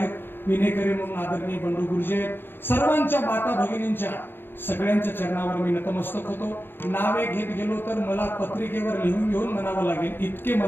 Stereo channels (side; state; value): right; late; 0.098 ms